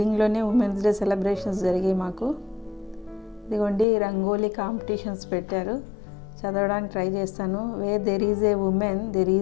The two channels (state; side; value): drops out; right; at 3.9 s